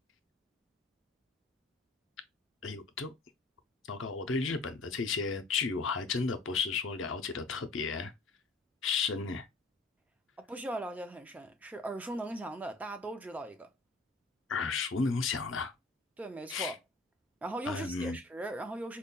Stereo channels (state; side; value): quieter; right; 3.4 dB